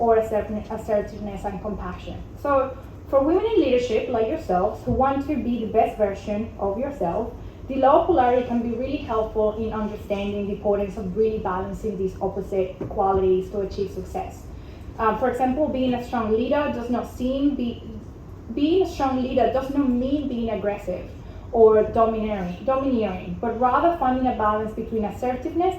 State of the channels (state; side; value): identical; both; correlation 1.00